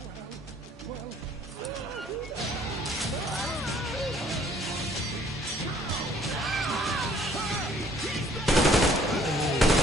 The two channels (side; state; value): both; normal; correlation 0.60